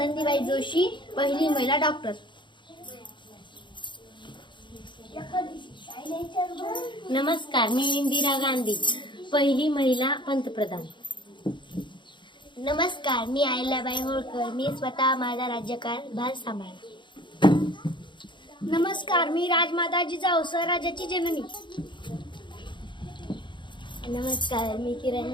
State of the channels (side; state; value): right; late; 0.23 ms